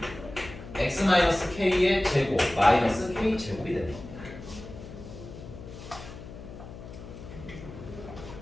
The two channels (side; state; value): left; noise; hum, 13 dB below the sound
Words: x 마이너스 k의 제곱 마이너스 k 제곱이 됩니다.